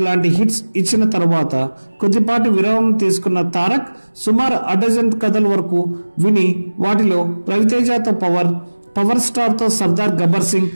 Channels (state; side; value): inverted; both; correlation -1.00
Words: లాంటి హిట్స్ ఇచ్చిన తర్వాత కొద్దిపాటి విరామం తీసుకున్న తారక్ సుమారు అడజన్ కథల వరకు విని వాటిలో రవితేజతో పవర్ స్టార్తో సర్దార్ గబ్బర్ సింగ్